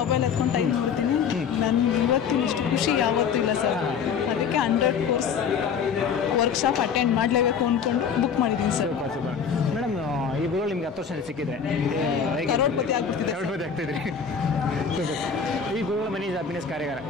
ಎತ್ಕೊಂಡು ಟೈಮ್ ನೋಡ್ತೀನಿ. ನನಗೆ ಇವತ್ತಿನ ಇಷ್ಟು ಖುಷಿ ಯಾವತ್ತೂ ಇಲ್ಲ ಸರ್. ಅದಕ್ಕೆ 100 ಕೋರ್ಸ್ ವರ್ಕ್ಶಾಪ್ ಅಟೆಂಡ್ ಮಾಡಲೇಬೇಕು ಅಂದ್ಕೊಂಡು ಬುಕ್ ಮಾಡಿದ್ದೀನಿ ಸರ್. ಸೂಪರ್ ಮೇಡಮ್, ಈ ಗುರುಗಳು ನಿಮ್ಗೆ 10 ವರ್ಷ ಸಿಕ್ಕಿದ್ರೆ ಹೇಗೆ ಕರೋಡ್ಪತಿ ಆಗ್ತಿದ್ರಿ? ಸೂಪರ್. ಈ ಗುರುಗಳ ಮನಿ ಹ್ಯಾಪಿನೆಸ್ ಕಾರ್ಯಾಗಾರ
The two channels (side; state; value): right; quieter; 6.7 dB